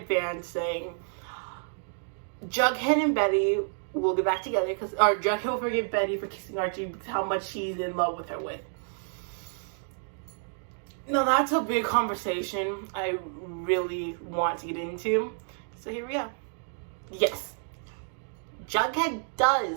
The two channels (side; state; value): left; silent; 58 dB below the other